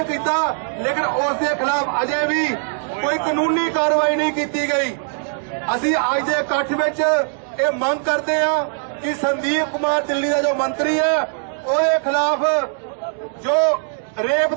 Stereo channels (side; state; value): left; silent; 65 dB below the other